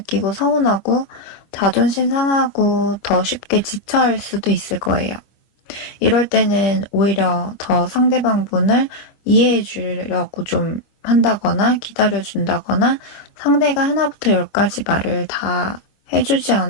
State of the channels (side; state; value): right; late; 25 ms